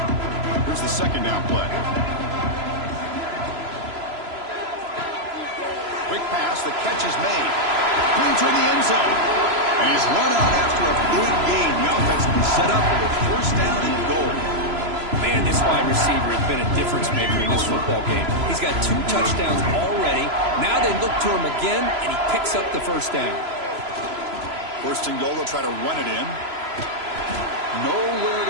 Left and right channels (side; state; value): left; late; 3.0 ms